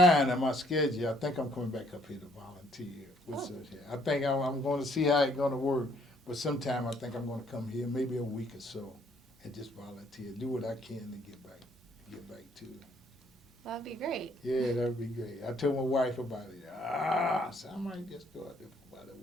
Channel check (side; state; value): both; normal; correlation 0.65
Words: and my schedule. I think I'm coming back up here to volunteer. I think I'm going to see how it's going to work. But sometime I think I'm going to come here, maybe a week or so, and just volunteer, do what I can to get back to it. That'd be great. Yeah, that'd be great. I told my wife about it. So I might just go out there for about a